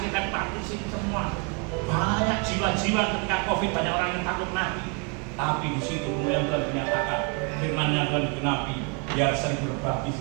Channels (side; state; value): left; quieter; 33.4 dB